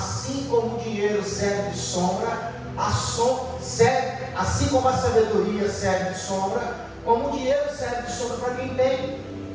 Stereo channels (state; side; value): identical; both; correlation 1.00